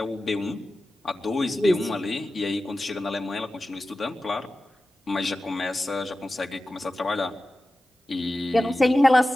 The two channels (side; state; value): both; normal; correlation 0.94